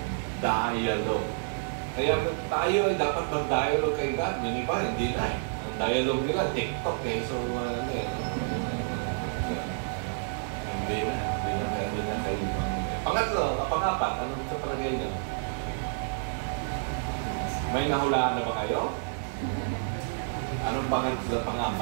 dialogue. Kaya tayo ay dapat mag-dialogue kay God. Yung iba, hindi na. Ang dialogue nila, TikTok eh. So, hindi na kayo. Pangatlo, pangapat, anong sa palagay niyo? May nahulaan na ba kayo? Anong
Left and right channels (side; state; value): left; silent; digital silence